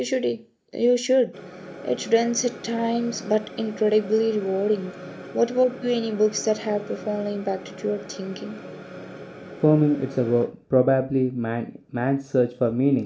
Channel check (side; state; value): both; identical; correlation 1.00